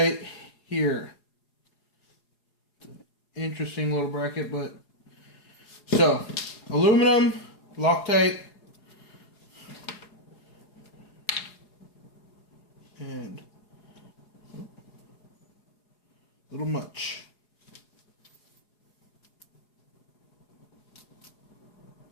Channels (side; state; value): right; late; 4.8 ms